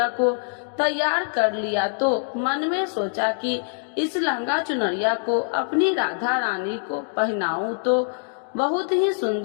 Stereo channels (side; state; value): right; silent; digital silence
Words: को तैयार कर लिया तो मन में सोचा कि इस लहंगा चुनरिया को अपनी राधा रानी को पहनाऊं तो बहुत ही